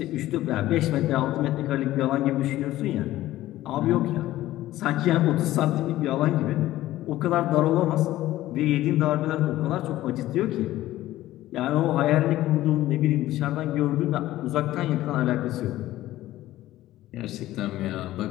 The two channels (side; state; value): right; quieter; 15.2 dB